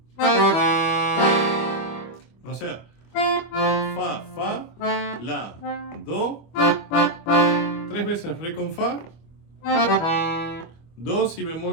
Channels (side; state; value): right; late; 25 ms